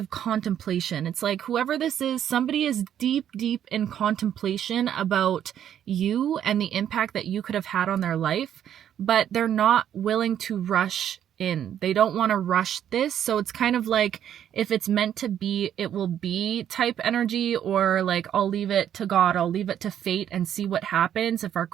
contemplation. It's like whoever this is, somebody is deep, deep in contemplation about you and the impact that you could have had on their life, but they're not willing to rush in. They don't want to rush this. So it's kind of like if it's meant to be, it will be type energy, or like I'll leave it to God, I'll leave it to fate and see what happens if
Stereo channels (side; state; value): left; quieter; 10.0 dB